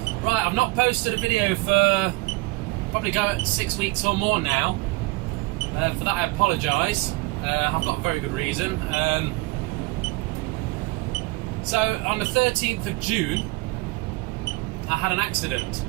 Right, I've not posted a video for probably 6 weeks or more now. For that I apologise. I've got a very good reason. So on the 13th of June, I had an accident.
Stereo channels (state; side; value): quieter; left; 22.9 dB